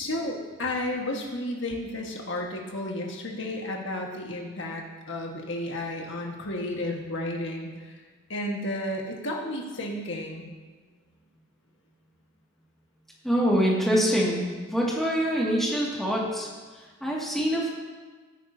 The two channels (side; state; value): both; normal; correlation 0.57